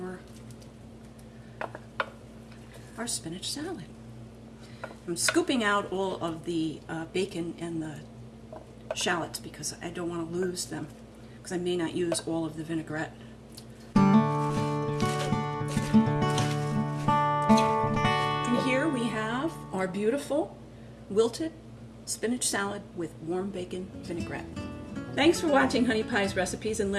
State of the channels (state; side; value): identical; both; correlation 1.00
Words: our spinach salad. I'm scooping out all of the bacon and the shallots because I don't want to lose them, because I may not use all of the vinaigrette. And here we have our beautiful wilted spinach salad with warm bacon vinaigrette. Thanks for watching Honey Pie's Recipes and